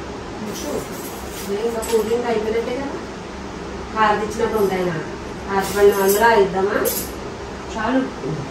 ఇంకా కూలింగ్ అయిపోయినట్టే కదా. హారతి ఇచ్చినట్టు ఉంటాయి నా హారతి అందరూ ఇద్దామా చాలు.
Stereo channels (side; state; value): both; identical; correlation 1.00